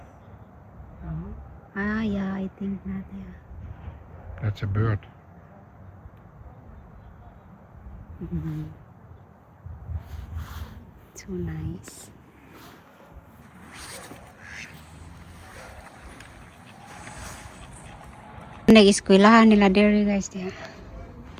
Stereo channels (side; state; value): both; identical; correlation 1.00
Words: Ah, yeah, I think not, yeah. That's a bird. So nice. Nag-eskwelahan nila dere guys diya.